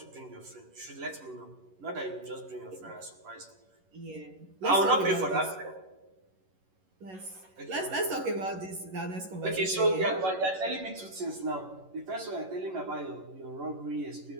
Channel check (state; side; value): late; left; 11 ms